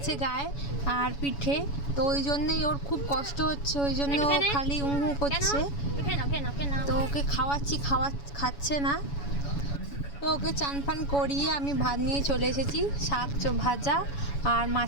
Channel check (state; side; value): late; right; 7.1 ms